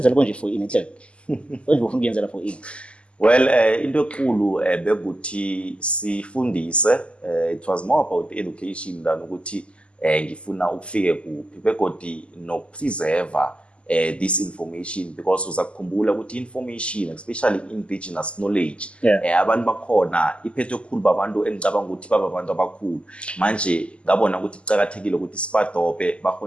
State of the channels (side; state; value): right; late; 0.055 ms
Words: konje for ini enhle konje bofuna ukwenza for ini. Well into enkulu bekuthi sifundise it was more about education than ukuthi ngifuna ukufike kuphi begodi no preserve this information, because uzakukhumbula ukuthi information, especially indigenous knowledge, abantu bakhona iphethwe khulu babantu engicabanga ukuthi baba abantu abakhulu. Manje ngabona ukuthi kucakathekile ukuthi sibadope